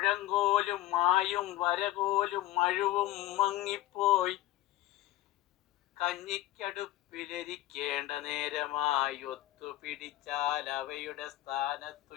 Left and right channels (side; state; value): right; quieter; 15.6 dB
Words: മായും വരകോലും മഴുവും മങ്ങിപ്പോയി. കഞ്ഞിക്കടുപ്പിലിരിക്കേണ്ട നേരമായി ഒത്തുപിടിച്ചാൽ അവയുടെ സ്ഥാനത്തു